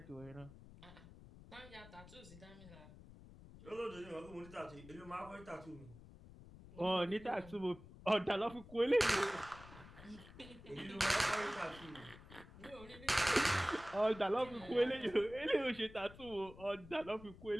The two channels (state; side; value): noise; left; rumble, 18 dB below the sound